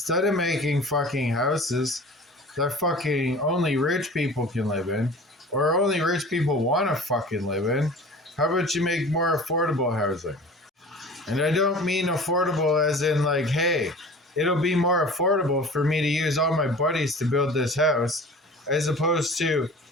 of making fucking houses that fucking only rich people can live in, or only rich people want to fucking live in, how about you make more affordable housing? And I don't mean affordable as in like, hey, it'll be more affordable for me to use all my buddies to build this house, as opposed to,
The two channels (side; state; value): both; normal; correlation 0.41